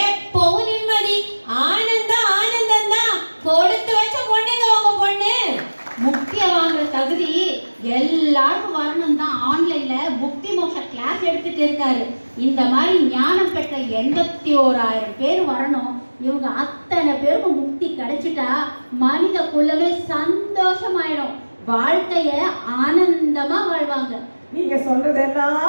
நிம்மதி, ஆனந்தம் ஆனந்தம் தான். கொடுத்து வச்ச பொண்ணுங்க உங்க பொண்ணு. முக்தியை வாங்குற தகுதி எல்லாருக்கும் வரணும் தான் ஆன்லைன்ல முக்தி மோட்ச கிளாஸ் எடுத்துட்டு இருக்காரு. இந்த மாதிரி ஞானம் பெற்ற 81,000 பேர் வரணும். இவங்க அத்தனை பேருக்கும் முக்தி கிடைச்சிட்டா மனித குலமே சந்தோஷமாயிடும். வாழ்க்கைய ஆனந்தமா வாழ்வாங்க. நீங்க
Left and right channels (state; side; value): inverted; both; correlation -1.00